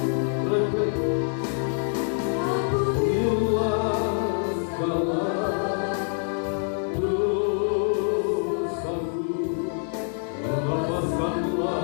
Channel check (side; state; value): right; silent; digital silence